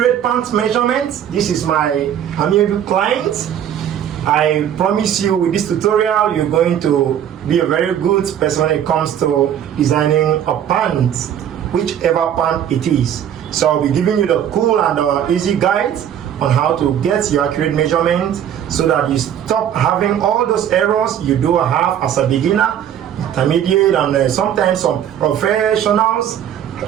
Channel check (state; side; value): quieter; left; 9.8 dB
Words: pant measurement. This is my amiable client. I promise you with this tutorial you're going to be a very good person when it comes to designing a pant, whichever pant it is. So I'll be giving you the cool and easy guides on how to get your accurate measurement so that you stop having all those errors you do have as a beginner, intermediate, and sometimes some professionals